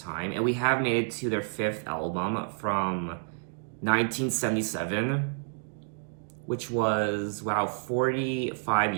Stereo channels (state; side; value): silent; left; digital silence